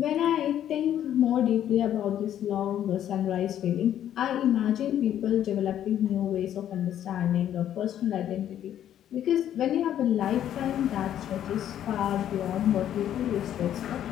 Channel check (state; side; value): quieter; right; 10.8 dB